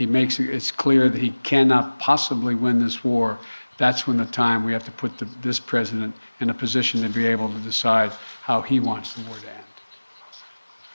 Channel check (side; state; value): both; inverted; correlation -1.00